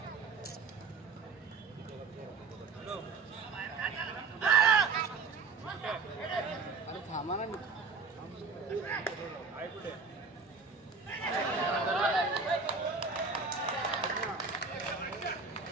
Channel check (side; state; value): left; quieter; 4.7 dB